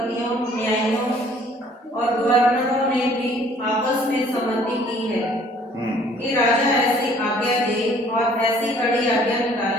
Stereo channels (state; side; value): normal; both; correlation 0.57